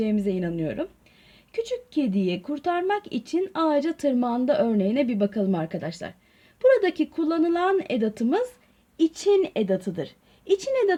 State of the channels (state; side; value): identical; both; correlation 1.00